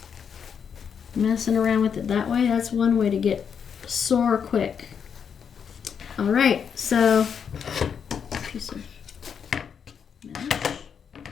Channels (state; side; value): quieter; right; 7.2 dB